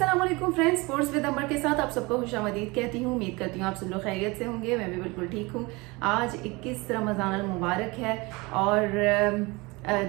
वालेकुम friends, sports with अमर के साथ आप सबको खुशामदीद कहती हूँ। उम्मीद करती हूँ आप सब लोग खैरियत से होंगे। मैं भी बिल्कुल ठीक हूँ। आज 21 रमज़ान अल मुबारक है और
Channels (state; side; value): quieter; left; 24.7 dB